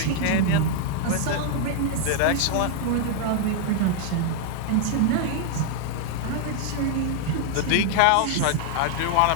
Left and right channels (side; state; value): both; different; correlation 0.00